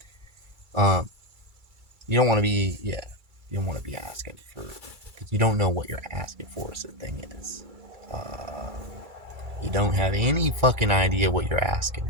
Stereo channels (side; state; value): left; late; 2.3 ms